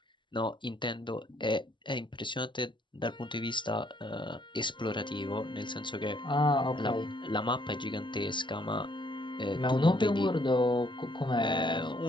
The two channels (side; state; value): right; late; 0.23 ms